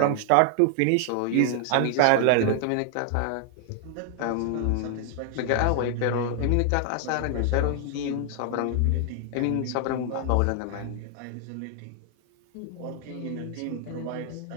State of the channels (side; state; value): both; different; correlation 0.00